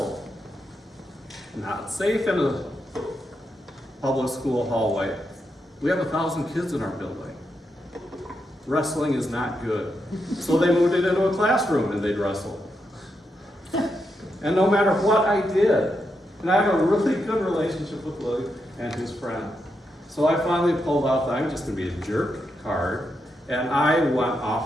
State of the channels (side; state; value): both; normal; correlation 0.84